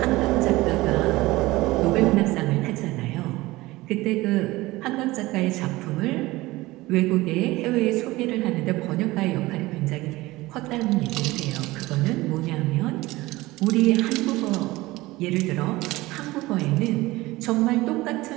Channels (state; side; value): quieter; left; 19.5 dB